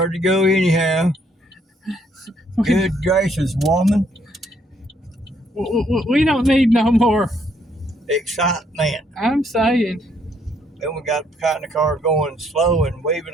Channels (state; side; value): normal; both; correlation 0.69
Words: to go anyhow. Good gracious, woman. We don't need no more Excitement. I'm saying. Then we got the car going slow and